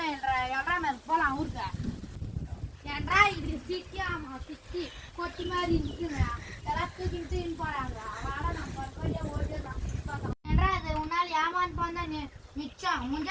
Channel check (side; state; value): both; identical; correlation 1.00